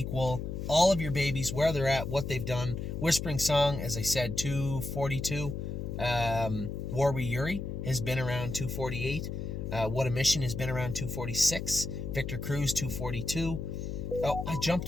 all of your babies, where they're at, what they've done. Whispering Song, as I said, 242. Warwi Yuri has been around 248. What a Mission has been around 246. Victor Cruz, 242. Oh, I jumped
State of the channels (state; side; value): noise; left; hum, 5 dB below the sound